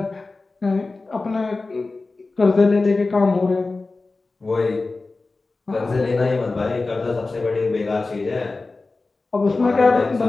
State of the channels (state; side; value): quieter; right; 3.6 dB